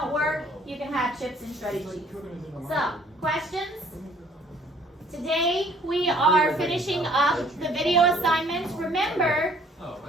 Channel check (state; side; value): normal; both; correlation 0.58